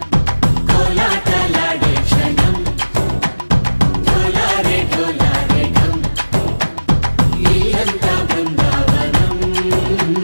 కోలాటలాడే క్షణం. ఢోలారే ఢోలారే ఢమ్, ఇల్లంతా బృందావనం,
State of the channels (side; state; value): both; inverted; correlation -1.00